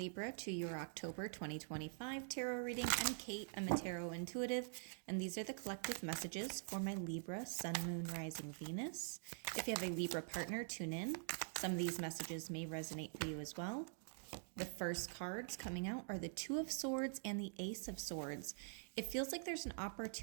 to your October 2025 tarot reading. I'm Kate. I'm a tarot intuitive, and these are the collective messages for my Libra, Sun, Moon, Rising, Venus. If you have a Libra partner, tune in. Some of these messages may resonate for you as well. The first cards coming out are the Two of Swords and the Ace of Swords. It feels like there's an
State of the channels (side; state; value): left; silent; digital silence